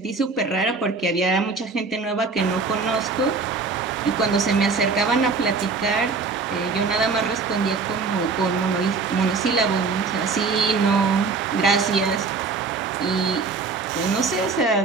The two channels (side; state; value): left; quieter; 4.4 dB